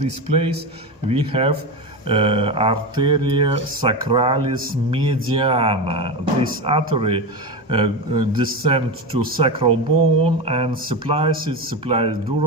place we have arteria sacralis mediana. This artery descends to sacral bone and supplies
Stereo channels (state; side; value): normal; both; correlation 0.19